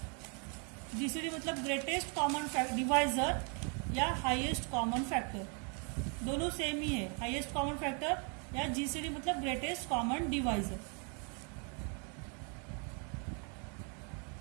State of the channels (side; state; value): left; quieter; 37.2 dB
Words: जीसीडी मतलब ग्रेटेस्ट कॉमन डिवाइजर या हाईएस्ट कॉमन फैक्टर, दोनों सेम ही है। हाईएस्ट कॉमन फैक्टर या जीसीडी मतलब ग्रेटेस्ट कॉमन डिवाइजर।